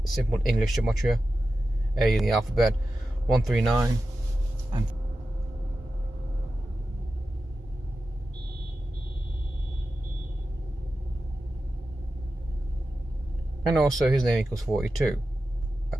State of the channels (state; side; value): normal; both; correlation 0.92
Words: English gematria. A in the alphabet, 139, and also his name equals 42.